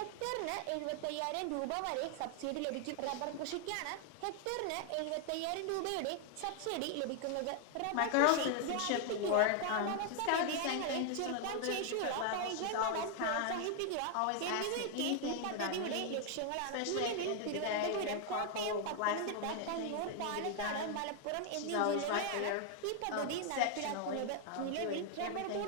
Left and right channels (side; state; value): both; different; correlation 0.00